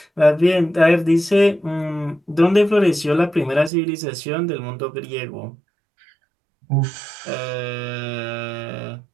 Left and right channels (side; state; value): left; drops out; at 3.7 s